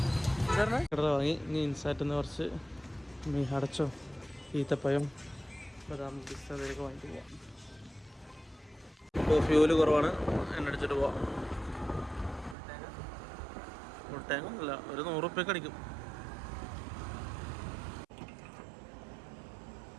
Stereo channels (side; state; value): left; drops out; at 12.6 s